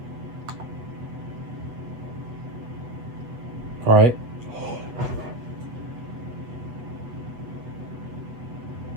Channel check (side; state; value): left; late; 8.1 ms